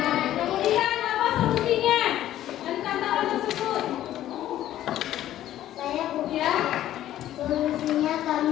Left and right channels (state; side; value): quieter; right; 12.8 dB